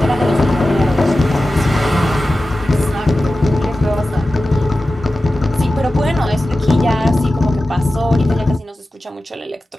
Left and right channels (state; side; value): normal; both; correlation 0.94